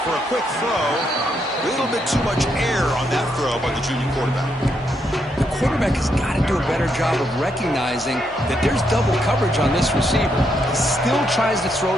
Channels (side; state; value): both; normal; correlation 0.78